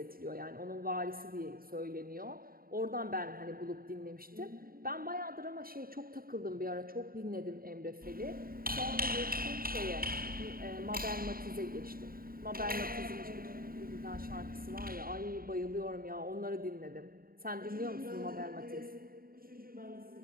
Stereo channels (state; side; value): late; left; 0.43 ms